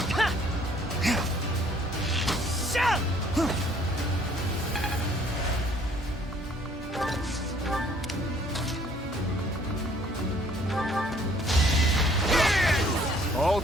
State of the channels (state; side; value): normal; both; correlation 0.60